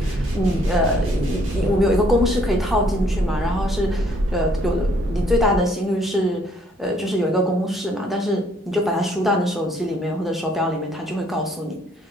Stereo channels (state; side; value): normal; both; correlation 0.65